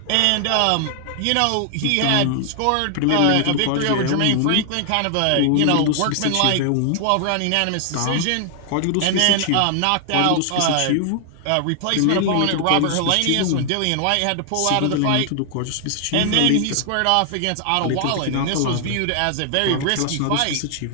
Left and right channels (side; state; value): both; different; correlation 0.00